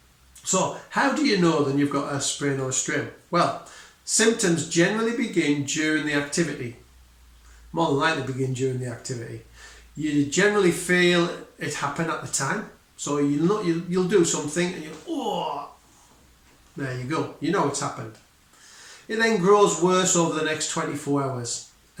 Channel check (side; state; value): both; identical; correlation 1.00